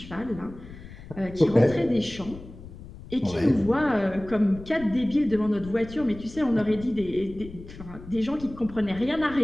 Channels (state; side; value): noise; left; rumble, 16 dB below the sound